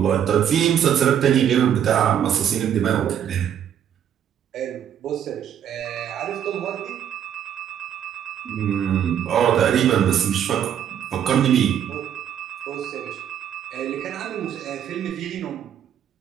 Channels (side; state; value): left; quieter; 9.4 dB